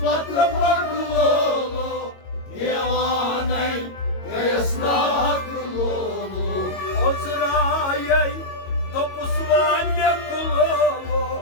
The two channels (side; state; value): right; late; 22 ms